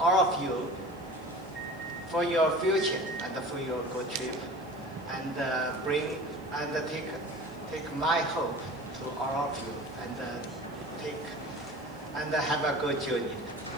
of you for your future and for your good trip, and take my hope to all of you, and have a good journey.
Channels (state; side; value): noise; right; hiss, 30 dB below the sound